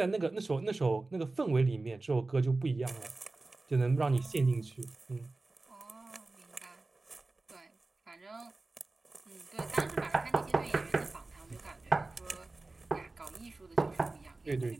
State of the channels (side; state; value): left; quieter; 3.3 dB